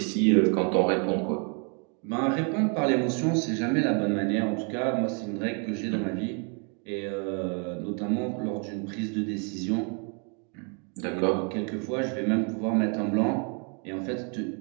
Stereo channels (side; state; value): left; quieter; 38.0 dB